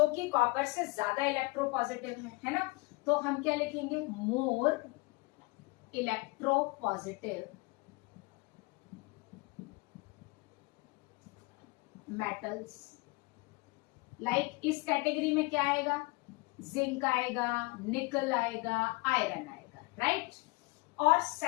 कि कॉपर से ज्यादा इलेक्ट्रोपॉजिटिव है ना। तो हम क्या लिखेंगे, मोर इलेक्ट्रोपॉजिटिव मेटल्स। लाइक इस कैटेगरी में क्या आएगा, जिंक आएगा, निकल आएगा, आयरन आएगा, राइट। और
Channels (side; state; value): right; quieter; 25.7 dB